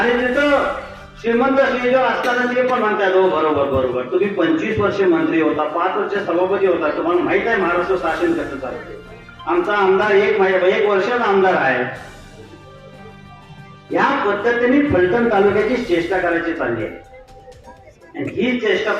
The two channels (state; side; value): identical; both; correlation 1.00